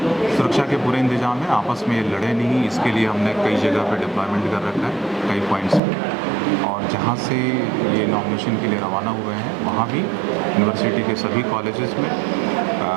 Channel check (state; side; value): drops out; left; at 5.8 s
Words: सुरक्षा के पूरे इंतजाम है, आपस में ये लड़े नहीं, इसके लिए हमने कई जगह पे डिप्लॉयमेंट कर रखा है, कई पॉइंट्स पे। और जहाँ से ये नॉमिनेशन के लिए रवाना हुए हैं वहाँ भी यूनिवर्सिटी के सभी कॉलेजेस में